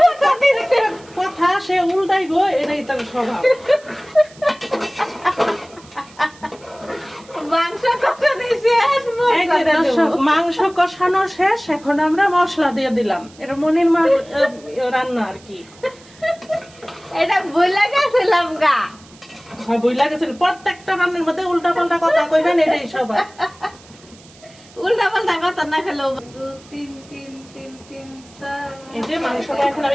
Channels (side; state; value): right; noise; hiss, 25 dB below the sound